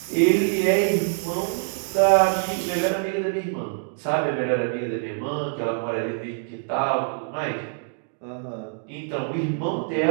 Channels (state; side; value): silent; left; 61 dB below the other